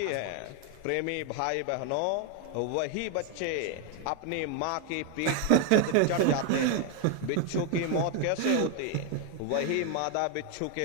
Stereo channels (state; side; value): different; both; correlation 0.01